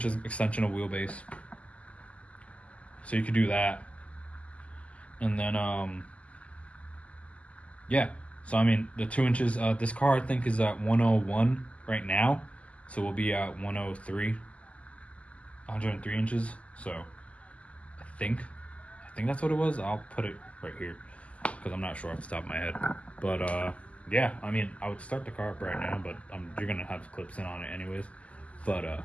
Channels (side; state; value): right; late; 0.064 ms